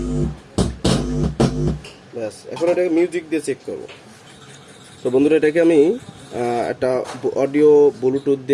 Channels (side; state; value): both; identical; correlation 1.00